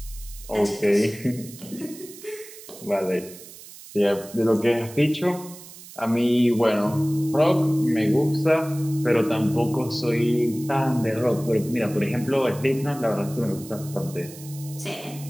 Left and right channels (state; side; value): noise; right; hiss, 17 dB below the sound